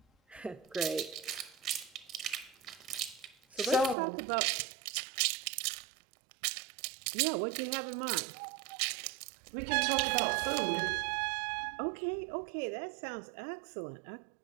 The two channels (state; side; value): drops out; left; at 4.0 s